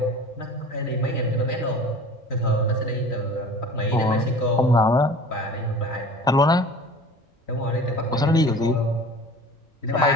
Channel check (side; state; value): both; normal; correlation 0.41